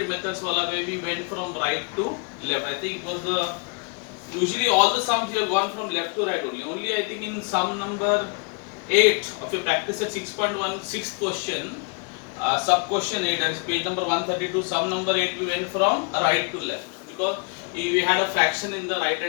methods wala where we went from right to left. I think it was the usually all the sums we have gone from left to right only. Only I think in sum number 8 of your practice at 6.1 sixth question, sub question 8, that is page number 132, sum number 8 we went from right to left because we had a fraction in the right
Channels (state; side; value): quieter; right; 34.9 dB